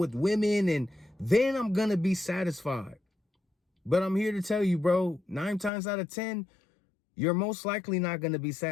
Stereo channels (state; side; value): drops out; right; at 5.7 s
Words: women, and then I'm going to be satisfied. But I'm here to tell you, bro, 9 times out of 10, you're most likely not going to be